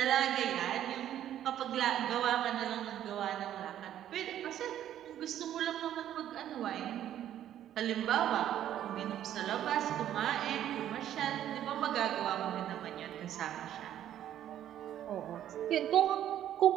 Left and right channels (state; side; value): quieter; left; 11.3 dB